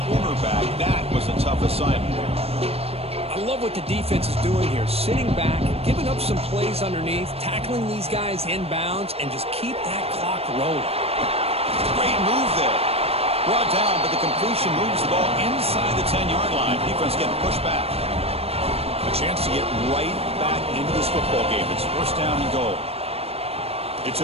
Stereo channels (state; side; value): late; left; 0.29 ms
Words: cornerback. That was a tough assignment. I love what the defense is doing here. Sitting back, giving up some plays underneath, tackling these guys inbounds, and just keep that clock rolling. Great move there. Brought down, but the completion moves the ball inside the 10-yard line. Defense getting pushed back. A chance to get right back into this football game. It's first down and goal. It's